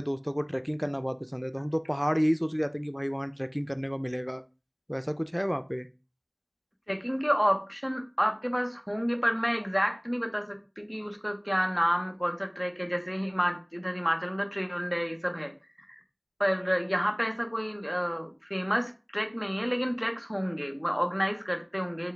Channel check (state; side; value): identical; both; correlation 1.00